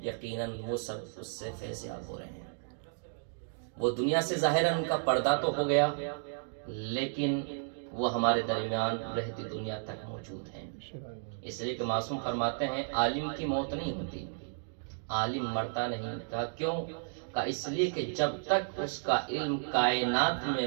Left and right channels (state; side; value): silent; left; digital silence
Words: یقیناً وہ سب اس سے فیضیاب ہو رہے ہیں۔ وہ دنیا سے ظاہراً ان کا پردہ تو ہو گیا، لیکن وہ ہمارے درمیان رہتی دنیا تک موجود ہیں۔ اس لیے کہ معصوم فرماتے ہیں عالم کی موت نہیں ہوتی، عالم مرتا نہیں۔ کہا کیوں؟ کہا اس لیے کہ جب تک اس کا علم کائنات میں